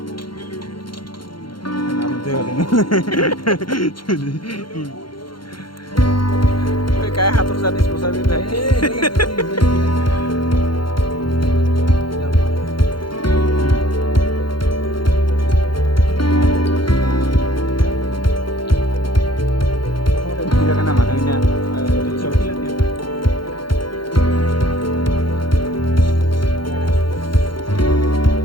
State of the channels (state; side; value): late; right; 0.73 ms